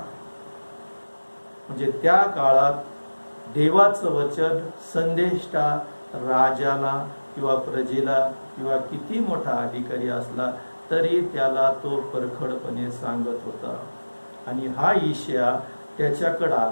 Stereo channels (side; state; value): both; inverted; correlation -1.00